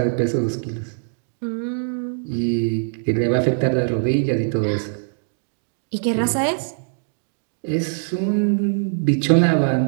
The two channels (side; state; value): left; silent; digital silence